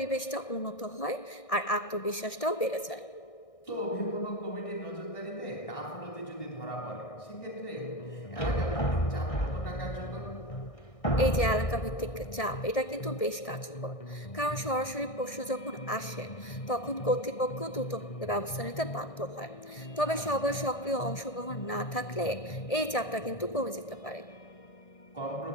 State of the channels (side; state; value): right; late; 1.6 ms